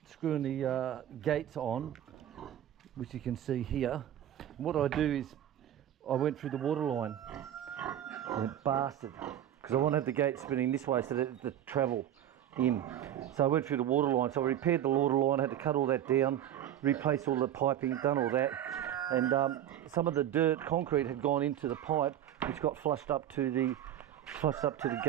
the gates on, which you can see here. And what I do is I went through the water line. I went bastard, because I want to have the gate spinning this way so that the travel in. So I went through the water line. So I repaired the water line. I had to cut all that down, replace all the piping, done all that, and some of the dirt concrete had gone into the pipe, which got flushed up to the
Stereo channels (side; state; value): left; quieter; 11.2 dB